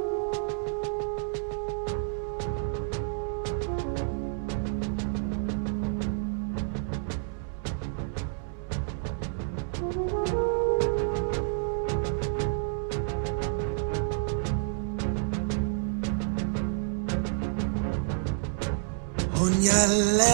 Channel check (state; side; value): silent; left; 58 dB below the other